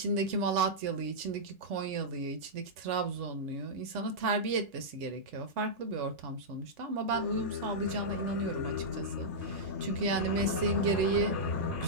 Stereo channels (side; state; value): left; late; 3.4 ms